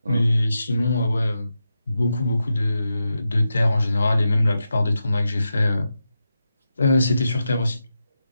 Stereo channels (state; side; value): inverted; both; correlation -0.88